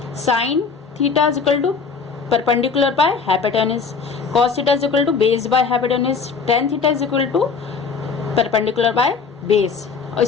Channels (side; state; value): right; quieter; 5.4 dB